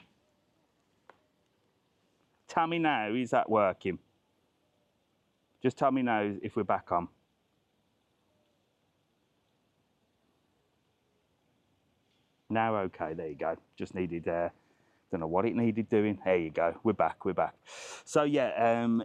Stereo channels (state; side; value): identical; both; correlation 1.00